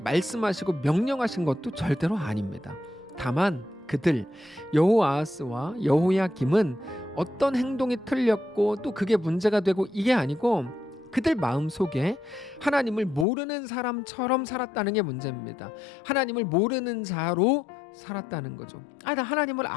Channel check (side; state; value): right; drops out; at 13.2 s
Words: 명령하신 것도 절대로 아닙니다. 다만 그들 여호아하스와 여호야김은 어떤 행동이 틀렸고 또 그게 문제가 되고 이게 아니고 그들 마음속에 하나님을 모르는 사람처럼 살았다는 게 문제입니다. 하나님을 모르는 자로 살았다는 거죠. 나 하나님을